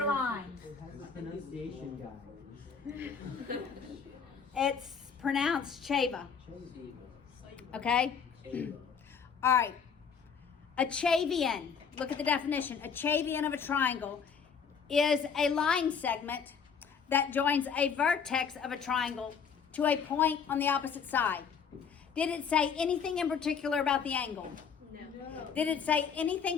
lines. Pronunciation guy. It's pronounced Chava. Okay? All right. A Chavian. Look at the definition. A Chavian of a triangle is a line segment that joins a vertex of a triangle to a point on the opposite side. Did it say anything in particular about the angle? No. Did it say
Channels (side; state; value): right; quieter; 6.5 dB